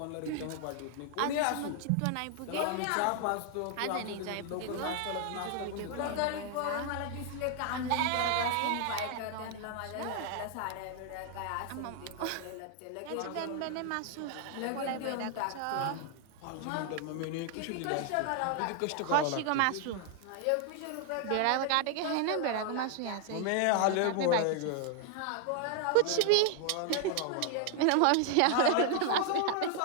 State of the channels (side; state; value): both; different; correlation 0.00